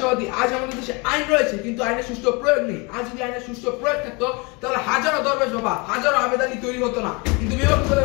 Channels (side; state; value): right; quieter; 28.7 dB